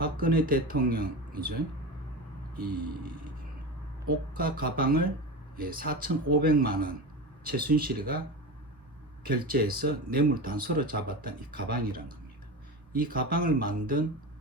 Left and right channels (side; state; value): both; normal; correlation 0.25